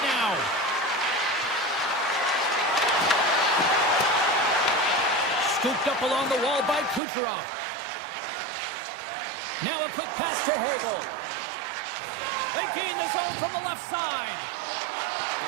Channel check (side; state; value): left; drops out; at 7.0 s